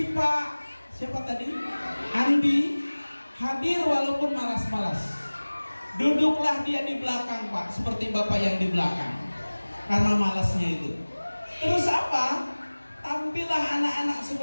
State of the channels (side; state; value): both; inverted; correlation -1.00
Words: Pak, siapa tadi? Andi hadir walaupun malas-malas. Duduklah dia di belakang Pak, seperti Bapak yang di belakang, karena malasnya itu. Terus apa? Tampillah anak-anak